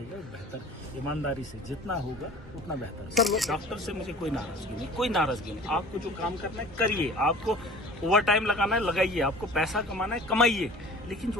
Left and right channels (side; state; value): both; normal; correlation 0.44